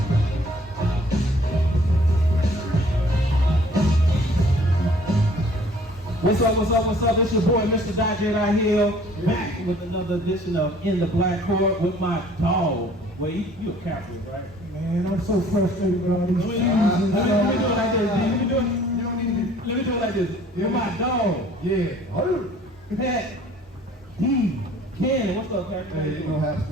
What's up, what's up, what's up? It's your boy, Mr. DJ right here, back with another edition of In the Black Court with my dog. Well, you a Catholic, right? Man, I'm so frustrated with all these Let me do it like this, D. Let me do it like this. You're my dog. Yeah. Pat, D, Ken, what's up, Pat? Hey, you know, Haps,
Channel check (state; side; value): normal; both; correlation 0.55